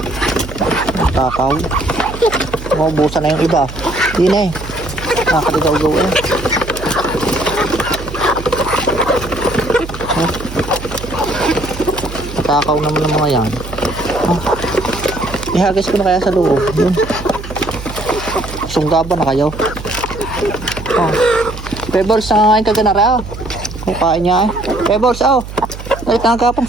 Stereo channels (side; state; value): right; noise; hum, 11 dB below the sound